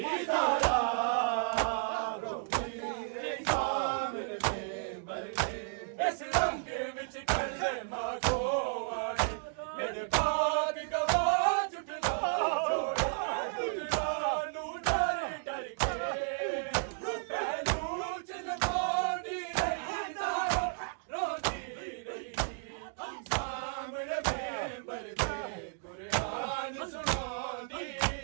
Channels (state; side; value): silent; left; digital silence